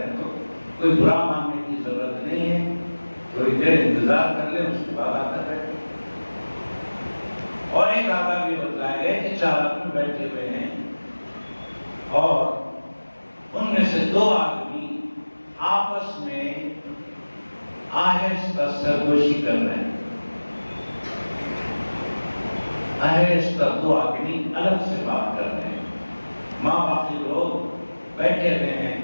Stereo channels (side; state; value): both; inverted; correlation -1.00